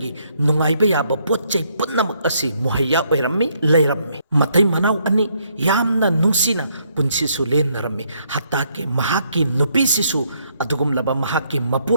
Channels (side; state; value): both; inverted; correlation -0.72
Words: नुंगाइबा याबा पोच्चै पुन्नमक असि मुहैया ओइरम्मी लैरम्मी मतै मनाव अनि यामना नुंसीना पुन्सिसु लेनरम्मी हत्ता के महाकी नुपीसिसु अदुगुमलबा महाकी